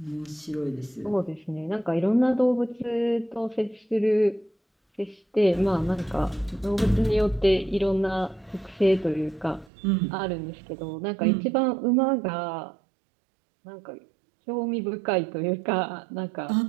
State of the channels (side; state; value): left; drops out; at 9.7 s